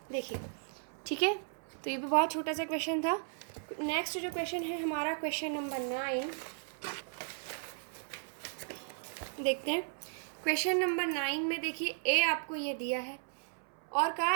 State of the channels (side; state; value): left; silent; 54 dB below the other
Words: देखिए ठीक है, तो ये भी बहुत छोटा सा क्वेश्चन था। नेक्स्ट जो क्वेश्चन है हमारा क्वेश्चन नंबर 9 देखते हैं। क्वेश्चन नंबर 9 में देखिए a आपको ये दिया है, और कहा